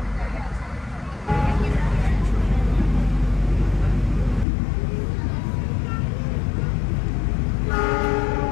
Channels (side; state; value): right; drops out; at 4.5 s